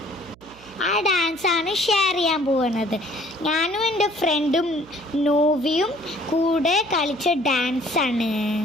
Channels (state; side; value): noise; right; hum, 25 dB below the sound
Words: ആ ഡാൻസാണ് ഷെയർ ചെയ്യാൻ പോകുന്നത്. ഞാനും എൻ്റെ ഫ്രണ്ടും നോവിയും കൂടെ കളിച്ച ഡാൻസാണ്.